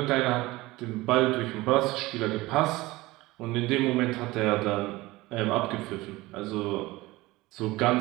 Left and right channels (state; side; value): quieter; left; 19.9 dB